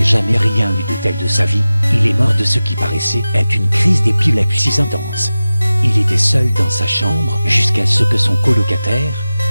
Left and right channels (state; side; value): inverted; both; correlation -0.96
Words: jamais rien eu de tel de sa vie, il est mort de ce qui paraissait être une crise d'épilepsie intense. Il était seul dans sa chambre jusqu'à ce que son colocataire,